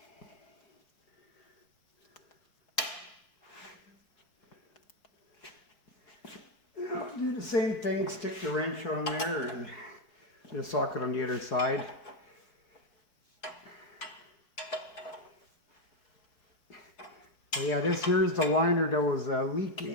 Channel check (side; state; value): right; late; 4.6 ms